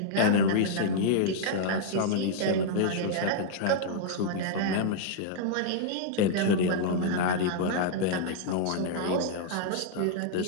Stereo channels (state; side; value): different; both; correlation -0.01